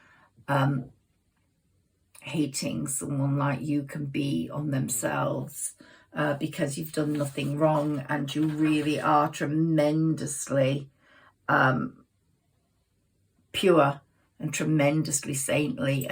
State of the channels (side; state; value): both; identical; correlation 1.00